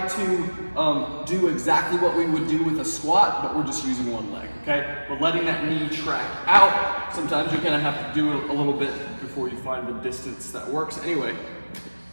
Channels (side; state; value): both; inverted; correlation -1.00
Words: do exactly what we would do with a squat, but we're just using 1 leg, okay? We're letting that knee track out. Sometimes you're gonna have to do it a little bit before you find the distance that works. Anyway,